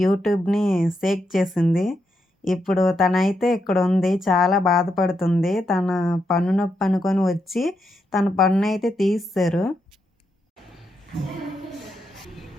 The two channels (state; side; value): normal; both; correlation 0.82